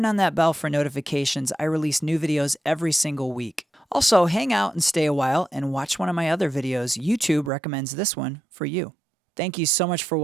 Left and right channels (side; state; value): left; drops out; at 7.5 s